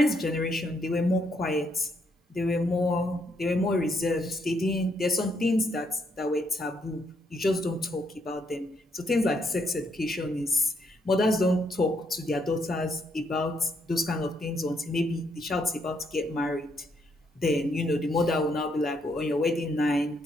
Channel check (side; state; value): both; normal; correlation 0.74